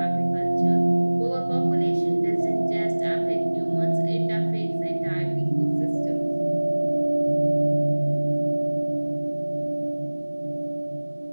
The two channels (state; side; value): inverted; both; correlation -1.00